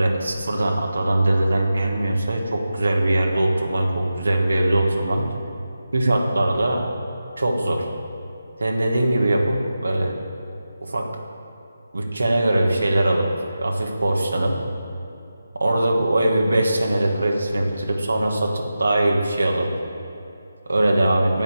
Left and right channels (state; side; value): inverted; both; correlation -0.92